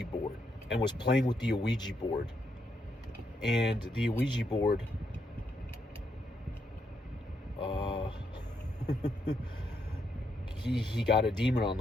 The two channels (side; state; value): both; normal; correlation 0.78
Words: board and was playing with the Ouija board. And the Ouija board, he got a demon on